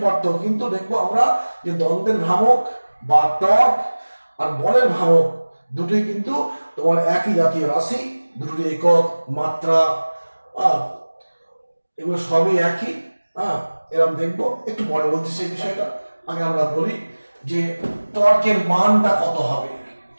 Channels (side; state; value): both; inverted; correlation -1.00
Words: পার্থক্য, কিন্তু দেখবো আমরা যে দ্বন্দ্বের ভ্রামক বা টর্ক আর বলের ভ্রামক দুটোই কিন্তু তোমার একই জাতীয় রাশি, দুটোর একক, মাত্রা, এগুলো সবই একই। এরকম দেখবো, একটু পরে বলছি সেই বিষয়টা। আগে আমরা বলি যে টর্কের মানটা কত হবে।